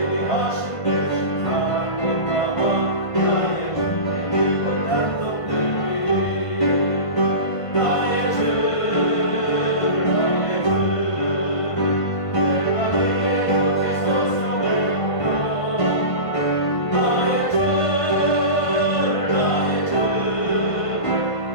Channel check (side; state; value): right; late; 1.5 ms